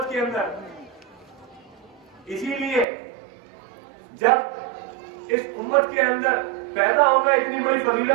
کے اندر۔ اسی لیے جب اس امت کے اندر پیدا ہونا اتنی بڑی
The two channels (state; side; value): drops out; left; at 2.9 s